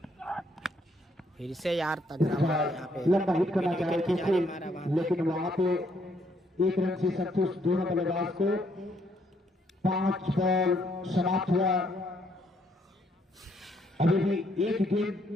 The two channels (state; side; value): normal; both; correlation 0.71